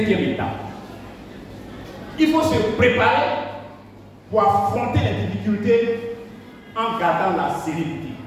étape. Il faut se préparer pour affronter les difficultés en gardant la sérénité.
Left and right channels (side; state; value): both; identical; correlation 1.00